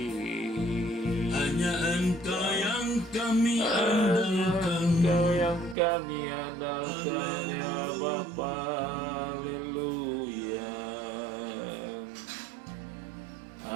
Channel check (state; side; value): drops out; left; at 5.8 s